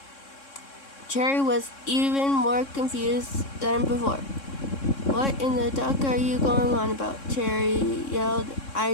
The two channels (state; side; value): late; right; 3.6 ms